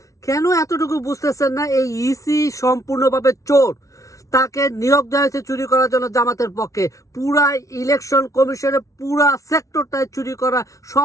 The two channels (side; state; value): right; late; 0.16 ms